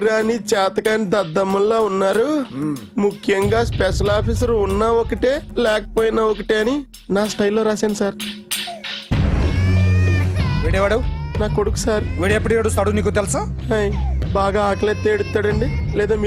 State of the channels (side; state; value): both; identical; correlation 1.00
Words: చేతకాని దద్దమ్మల్లా ఉన్నారు, ముఖ్యంగా స్పెషల్ ఆఫీసర్ ఉన్నా ఒకటే లేకపోయినా ఒకటే అని నా స్టైల్లో రాశాను సార్. వీడేవాడు? నా కొడుకు సార్. వీడు ఎప్పుడు ఏడుస్తాడు నీకు తెలుసా? హాయ్, బాగా ఆకలిస్తే ఎడుతాడండి, లేదా